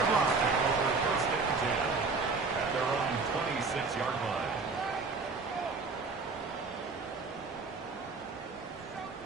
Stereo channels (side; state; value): left; quieter; 4.3 dB